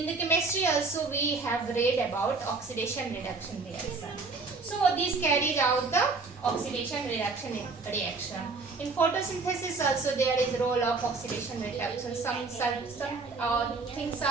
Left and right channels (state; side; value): quieter; left; 4.1 dB